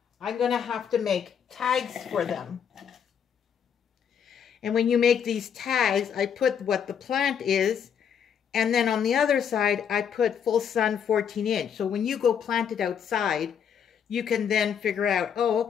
I'm going to have to make tags for them. And when you make these tags, I put what the plant is, and then on the other side, I put full sun 14 inch. So when you go plant it outside, you can then figure out, oh,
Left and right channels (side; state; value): right; quieter; 7.9 dB